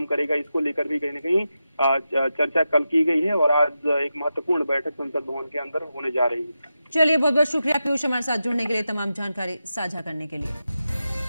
करेगा, इसको लेकर भी कहीं न कहीं चर्चा कल की गई है और आज एक महत्वपूर्ण बैठक संसद भवन के अंदर होने जा रही है। चलिए, बहुत बहुत शुक्रिया पीयूष हमारे साथ जुड़ने के लिए, तमाम जानकारी साझा करने के लिए।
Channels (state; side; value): inverted; both; correlation -0.90